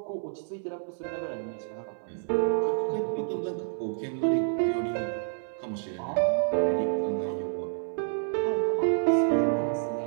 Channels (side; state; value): left; silent; 59 dB below the other